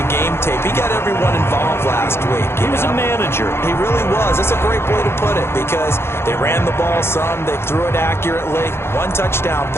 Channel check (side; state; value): right; late; 0.12 ms